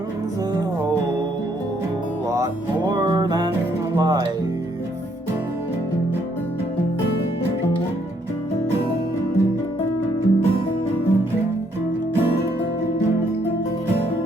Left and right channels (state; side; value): normal; both; correlation 0.70